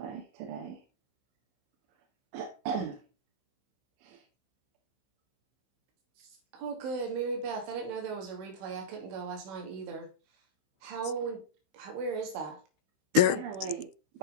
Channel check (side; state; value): left; late; 15 ms